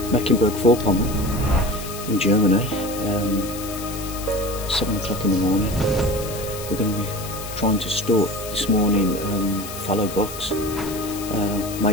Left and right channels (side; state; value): left; noise; hiss, 11 dB below the sound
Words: Mecklenburg-Vorpommern in Germany, 7 o'clock in the morning. We're going to be trying to stalk this morning fallow bucks,